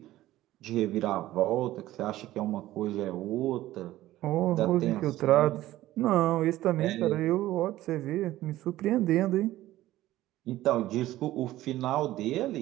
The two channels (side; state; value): left; quieter; 15.4 dB